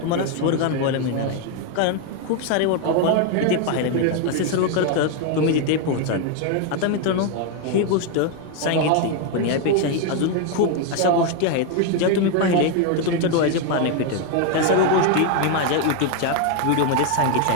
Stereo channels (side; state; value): both; different; correlation 0.01